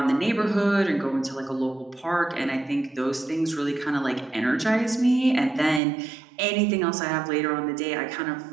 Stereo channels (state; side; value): drops out; left; at 5.8 s